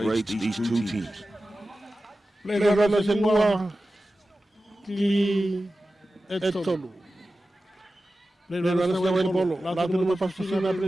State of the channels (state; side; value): normal; both; correlation 0.94